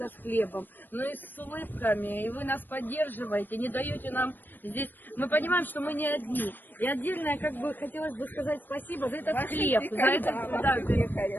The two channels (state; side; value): late; right; 0.092 ms